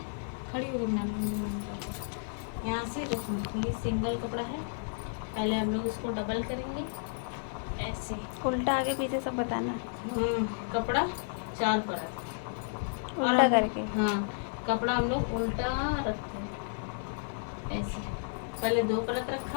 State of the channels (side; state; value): right; silent; 56 dB below the other